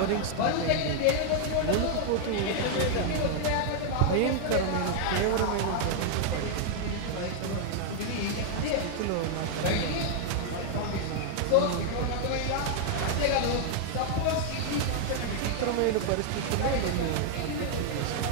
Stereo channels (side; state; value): both; different; correlation 0.00